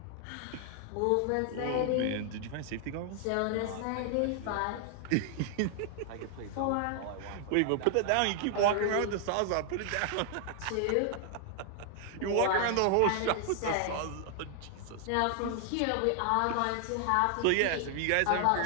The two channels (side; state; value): both; different; correlation 0.00